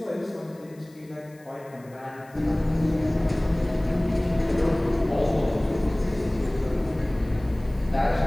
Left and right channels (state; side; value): noise; left; hiss, 29 dB below the sound